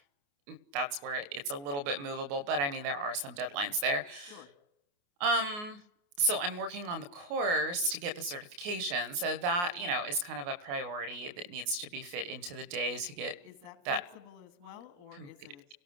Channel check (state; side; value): late; left; 28 ms